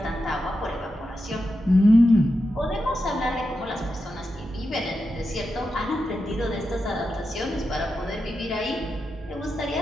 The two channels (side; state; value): both; normal; correlation 0.88